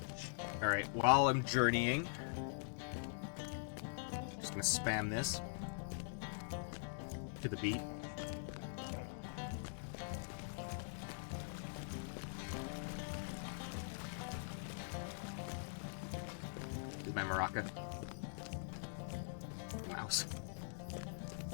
Alright, while I'm journeying, just gonna spam this to the beat. Is my maraca. Mouse.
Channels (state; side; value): silent; right; digital silence